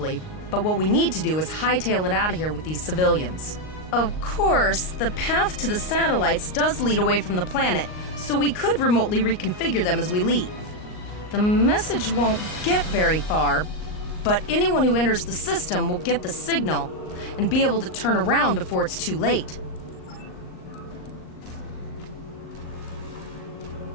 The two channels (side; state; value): right; late; 38 ms